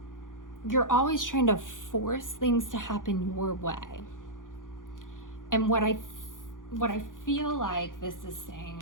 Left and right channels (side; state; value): right; late; 0.89 ms